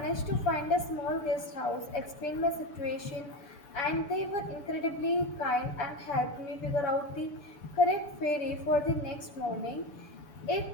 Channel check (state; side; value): late; right; 7.2 ms